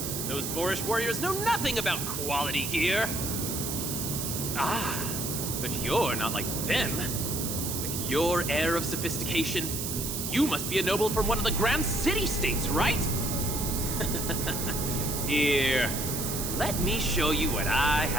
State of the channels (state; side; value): noise; right; hiss, 3 dB below the sound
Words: Those boorish warriors know nothing about quality gear. Ah, but you're not like them. With your air of sophistication, you must be a noble from one of the Grand City-states, right? Here, let me show you what I